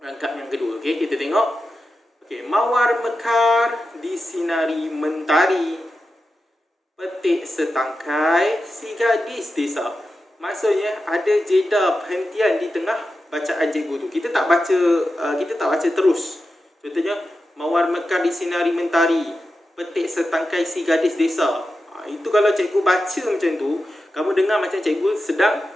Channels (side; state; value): both; normal; correlation 0.91